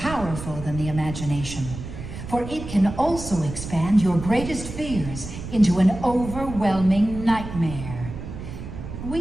than the imagination, for it can also expand your greatest fears into an overwhelming nightmare.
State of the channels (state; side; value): noise; right; rumble, 9 dB below the sound